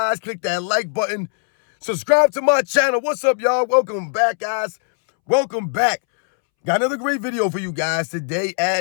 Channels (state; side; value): silent; right; 66 dB below the other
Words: Click that like button. Subscribe to my channel. What's up, y'all? Welcome back, guys. Welcome back. Got another great video for you guys today.